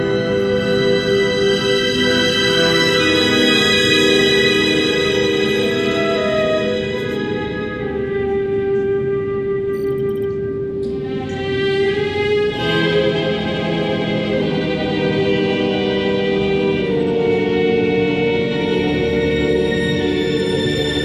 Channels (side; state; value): both; identical; correlation 1.00